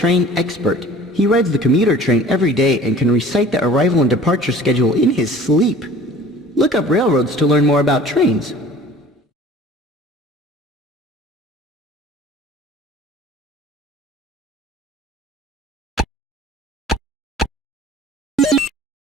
expert. He rides the commuter train every day and can recite the arrival and departure schedule in his sleep. Look up railroads to learn more about trains.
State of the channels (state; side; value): normal; both; correlation 0.47